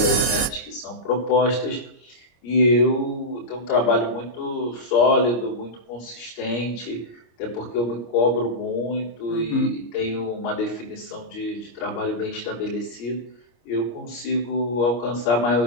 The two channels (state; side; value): late; right; 25 ms